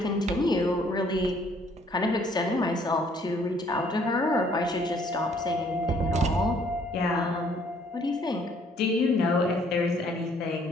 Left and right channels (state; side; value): normal; both; correlation 0.62